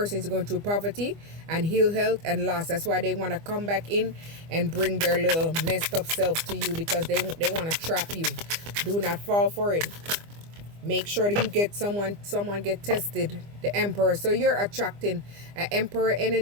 is going through poverty and ill health and loss. That's why they want to come back in and bring their little messed up self to you, because they want to trap you. Do not fall for it. Make sure that you get someone get tested. The Emperor. So you're attracting an Emperor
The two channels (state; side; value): late; left; 25 ms